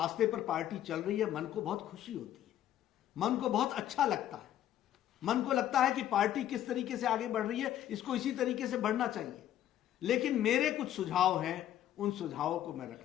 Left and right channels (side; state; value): right; quieter; 11.8 dB